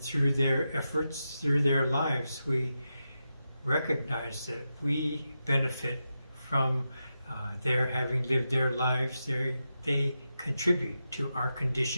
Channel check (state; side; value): inverted; both; correlation -0.89